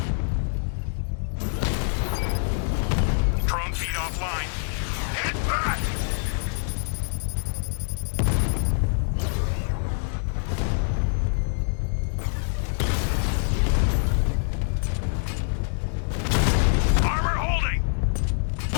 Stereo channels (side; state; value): right; silent; digital silence